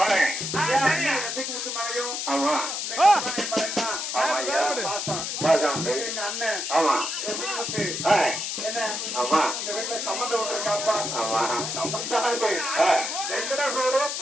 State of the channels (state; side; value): noise; left; hiss, 3 dB below the sound